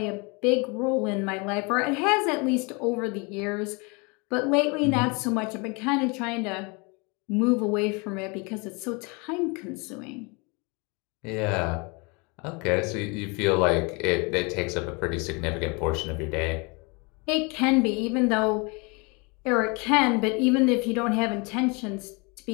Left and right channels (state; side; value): quieter; right; 29.9 dB